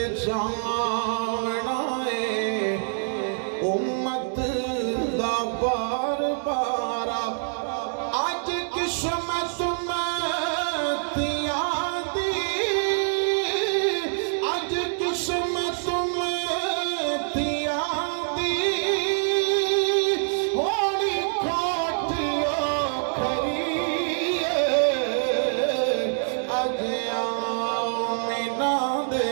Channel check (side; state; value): left; silent; digital silence